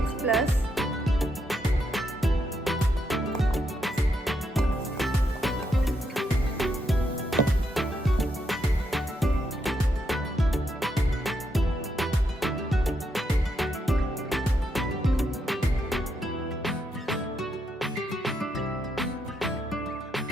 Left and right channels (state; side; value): normal; both; correlation 0.80